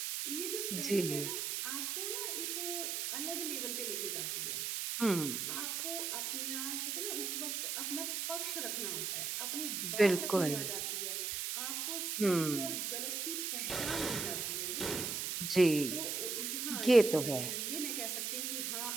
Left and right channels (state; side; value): noise; right; hiss, 1 dB below the sound